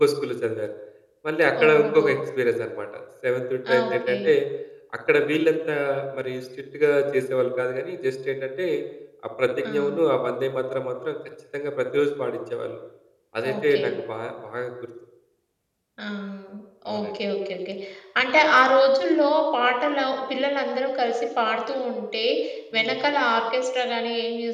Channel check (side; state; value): both; identical; correlation 1.00